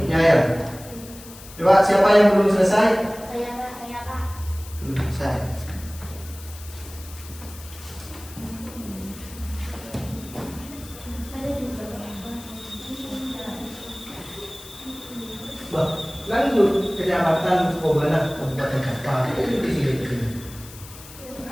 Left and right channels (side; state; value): left; noise; hiss, 17 dB below the sound